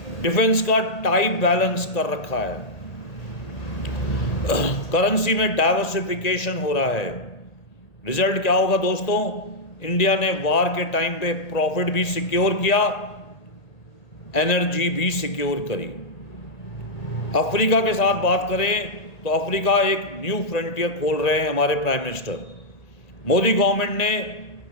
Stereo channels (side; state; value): right; late; 1.8 ms